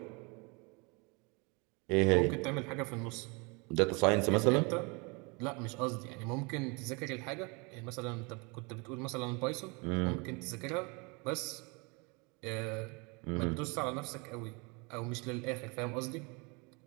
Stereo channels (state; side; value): quieter; left; 29.8 dB